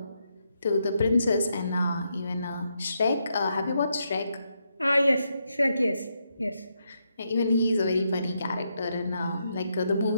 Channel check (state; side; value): inverted; both; correlation -0.81